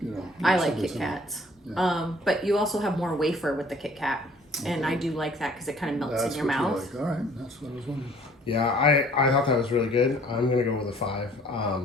you know? I like Kit Kats. Yeah. But you also have more wafer with the Kit Kat. And I do like that because it kind of melts in your mouth. Like. All right, that's what I was wondering. Yeah, I thought that was really good. I'm going to go with a 5.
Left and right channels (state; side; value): normal; both; correlation 0.55